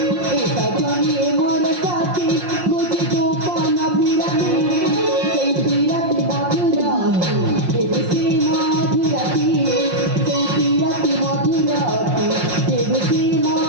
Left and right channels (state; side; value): late; left; 5.6 ms